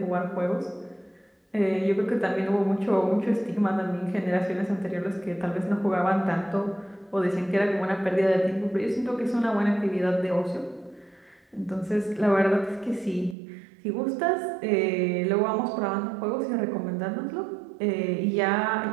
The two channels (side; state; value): left; drops out; at 13.4 s